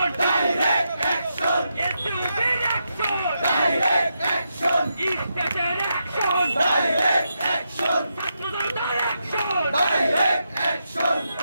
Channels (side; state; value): both; inverted; correlation -0.84